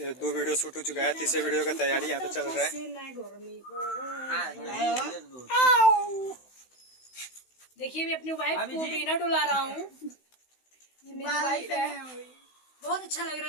2 वीडियो शूट हो चुका है, तीसरे वीडियो का तैयारी यहाँ पे चल रहा है। देखिए मैं अपनी वाइफ को बिना डुला रहा हूँ, ये मेरी वाइफ है। बहुत अच्छा लग रहा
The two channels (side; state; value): right; late; 16 ms